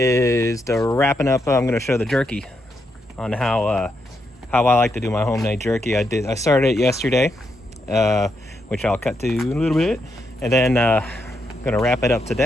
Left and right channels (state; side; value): normal; both; correlation 0.81